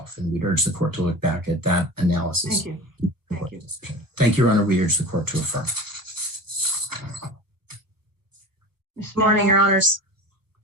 And we'd urge the court to look back at that analysis. Thank you. Thank you. Thank you, Your Honor. We urge the court to affirm. Good morning, Your Honors.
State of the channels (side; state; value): left; late; 1.1 ms